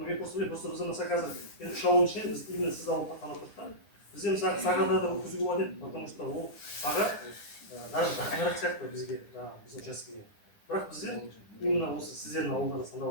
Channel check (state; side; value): late; right; 10 ms